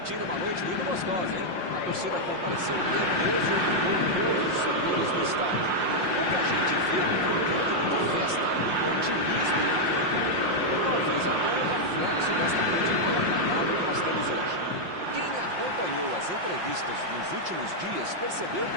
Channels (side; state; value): left; late; 5.6 ms